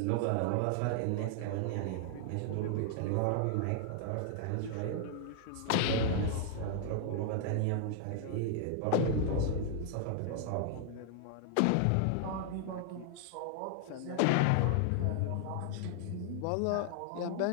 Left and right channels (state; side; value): different; both; correlation 0.00